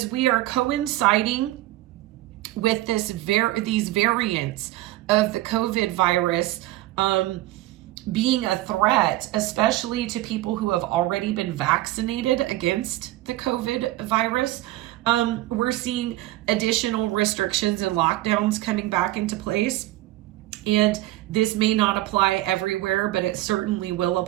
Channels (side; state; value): left; quieter; 16.5 dB